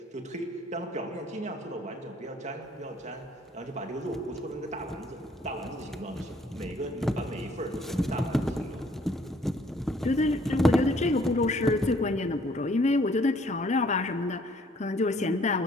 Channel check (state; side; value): normal; both; correlation 0.62